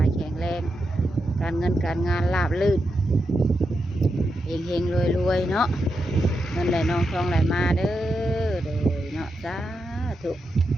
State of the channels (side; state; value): both; normal; correlation 0.86